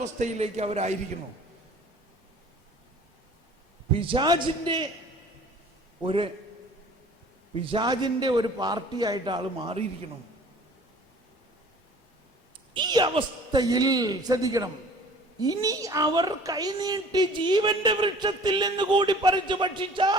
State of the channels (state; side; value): normal; both; correlation 0.49